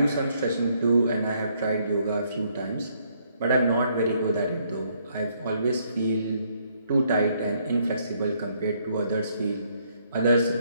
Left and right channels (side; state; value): both; inverted; correlation -0.70